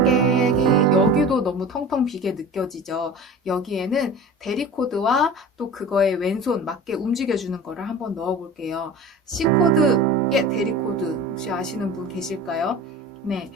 여기도 너무 텅텅 비게 느껴지죠. 여기에는 대리 코드와 또 그거에 왼손 맞게 움직여주는 거를 한번 넣어볼게요. C 코드의 대리 코드 혹시 아시는 분 계실까요? 네,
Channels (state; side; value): normal; both; correlation 0.36